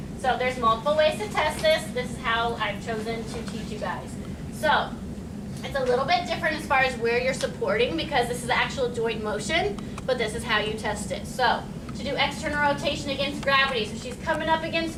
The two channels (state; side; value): identical; both; correlation 1.00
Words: So there's multiple ways to test this. This is how I've chosen to teach you guys. So it's a little bit different as far as where you're supporting, because this is actual joint motion, but this is how you test it. So to do external rotation against gravity, so she's coming up